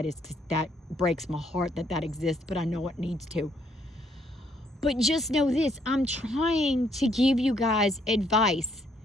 is because that breaks my heart that exists, but I know it needs to. But just know this, I'm trying to give you guys advice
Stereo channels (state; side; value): normal; both; correlation 0.69